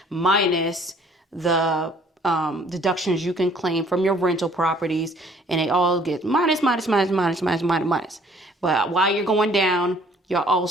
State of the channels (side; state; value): both; normal; correlation 0.58